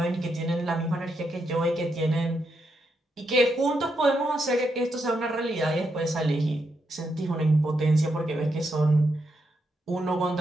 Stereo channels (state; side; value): normal; both; correlation 0.82